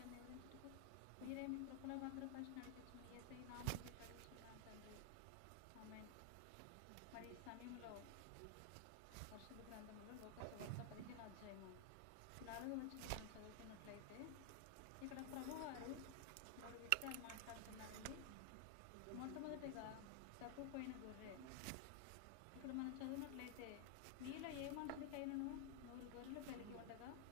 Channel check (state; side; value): different; both; correlation 0.00